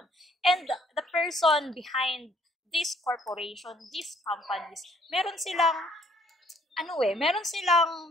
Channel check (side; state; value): both; normal; correlation 0.63